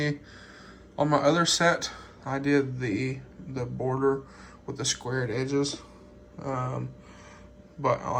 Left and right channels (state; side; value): identical; both; correlation 1.00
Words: on my other set, I did the border with the squared edges. But I